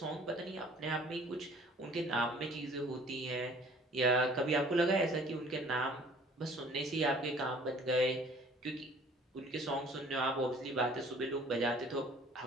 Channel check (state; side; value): normal; both; correlation 0.53